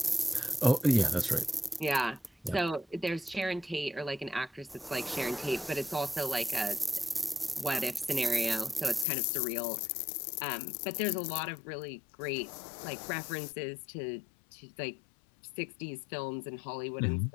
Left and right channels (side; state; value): right; drops out; at 9.1 s